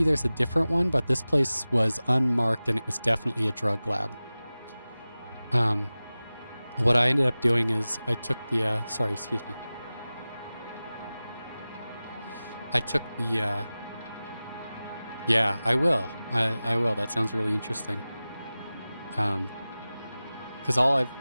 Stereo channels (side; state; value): both; inverted; correlation -0.97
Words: a different one, but this place was unmarked and it was definitely a drug lab. What I ended up doing is I took the, sorry, excuse me. I took the, yeah, I will. I will. That sounds really interesting. Because all I've